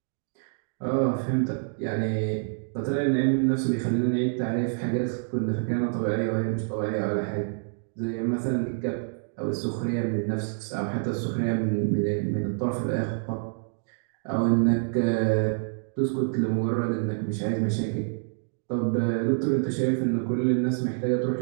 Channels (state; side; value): silent; left; digital silence